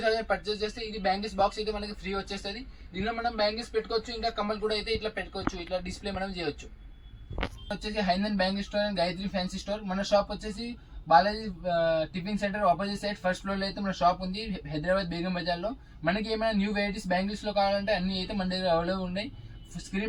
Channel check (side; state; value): both; identical; correlation 1.00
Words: పర్చేస్ చేస్తే ఇది బ్యాంగిల్స్ బాక్స్ అయితే మనకి ఫ్రీ వచ్చేస్తుంది. దీనిలో మనం బ్యాంగిల్స్ పెట్టుకోవచ్చు, ఇంకా కమ్మలు కూడా అయితే ఇట్లా పెట్టుకోవచ్చు, ఇట్లా డిస్ప్లే మనం చేయొచ్చు. వచ్చేసి హైనంద్ bangle store and Gayatri fancy store. మన షాప్ వచ్చేసి Balaji tiffin centre opposite side first floor లో అయితే మన షాప్ ఉంది, హైదరాబాద్ బేగం బజార్ లో. మనకి ఏమైనా న్యూ వెరైటీస్ బ్యాంగిల్స్ లో కావాలంటే అన్ని అయితే మన దగ్గర అవైలబుల్ ఉన్నాయి.